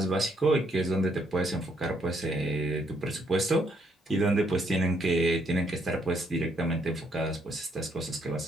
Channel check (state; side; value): normal; both; correlation 0.71